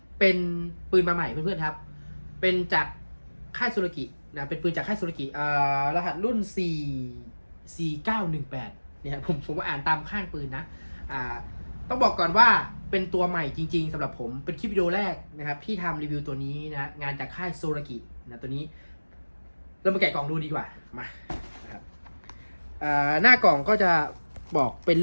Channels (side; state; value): both; inverted; correlation -1.00